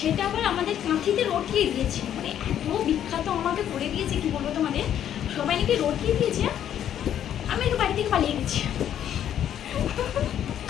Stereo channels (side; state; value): right; quieter; 10.3 dB